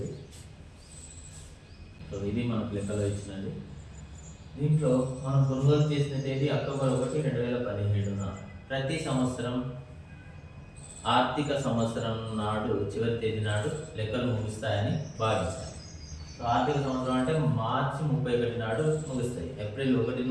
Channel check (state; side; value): identical; both; correlation 1.00